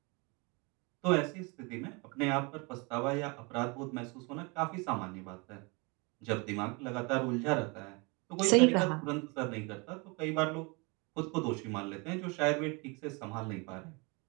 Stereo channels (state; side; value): quieter; left; 29.3 dB